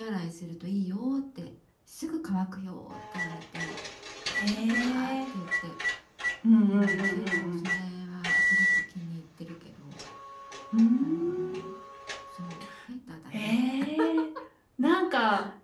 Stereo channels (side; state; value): both; identical; correlation 1.00